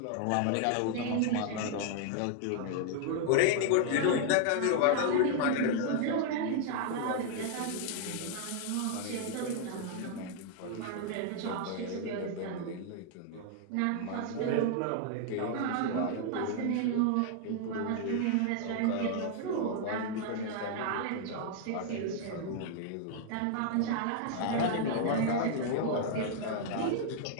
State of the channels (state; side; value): different; both; correlation 0.00